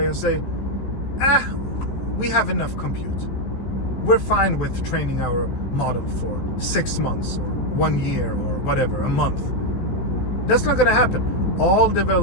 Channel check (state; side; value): late; right; 15 ms